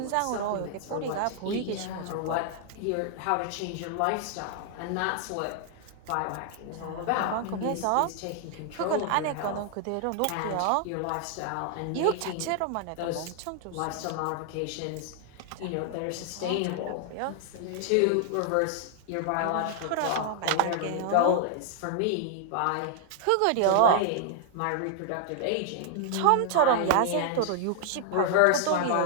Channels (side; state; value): both; different; correlation 0.00